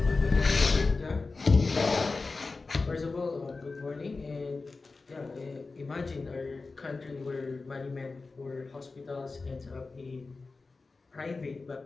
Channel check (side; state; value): right; quieter; 3.9 dB